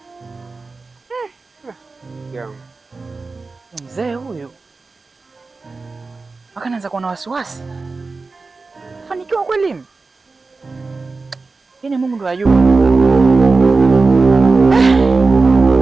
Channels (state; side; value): quieter; left; 3.9 dB